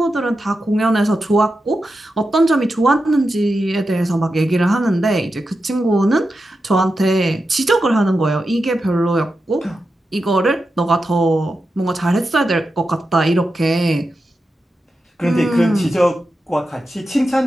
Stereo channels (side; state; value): both; normal; correlation 0.90